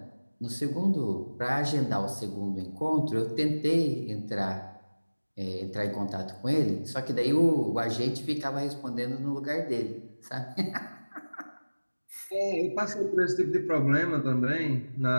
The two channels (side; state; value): both; inverted; correlation -1.00